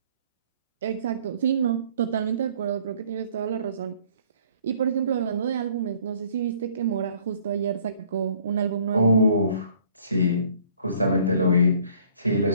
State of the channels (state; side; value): inverted; both; correlation -0.58